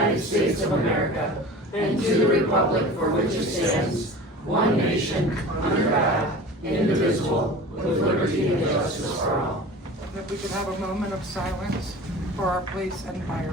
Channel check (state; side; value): normal; both; correlation 0.38